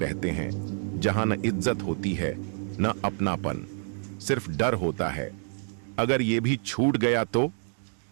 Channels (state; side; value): silent; left; digital silence